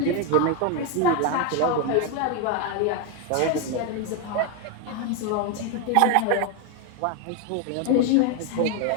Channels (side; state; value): both; different; correlation 0.01